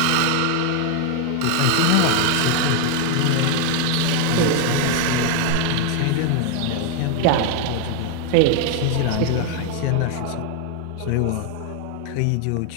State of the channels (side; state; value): both; different; correlation 0.01